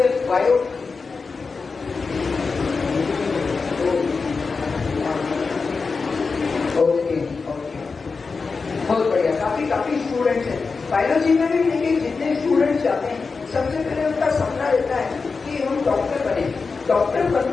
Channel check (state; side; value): quieter; right; 4.6 dB